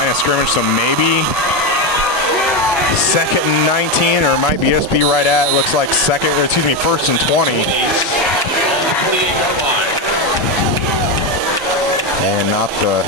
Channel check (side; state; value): both; normal; correlation 0.11